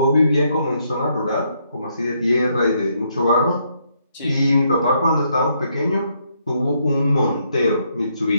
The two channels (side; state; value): both; inverted; correlation -0.74